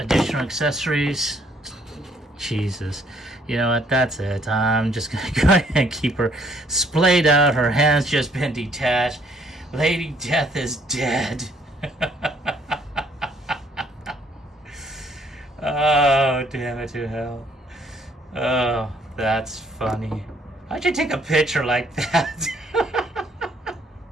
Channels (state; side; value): normal; both; correlation 0.65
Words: accessories, Jesus, you know what? That's it. I'm just gonna go ahead and keep her splayed out. Her hands just been detached. Lady Death is dead. Oh, damn it to hell. Oh, that's funny. How'd you take a picture like that?